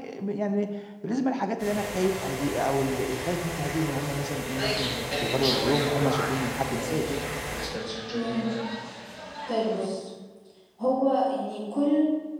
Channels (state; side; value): identical; both; correlation 1.00